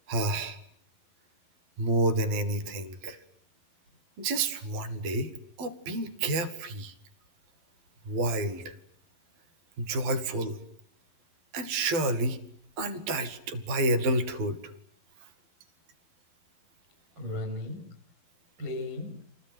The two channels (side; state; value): left; late; 12 ms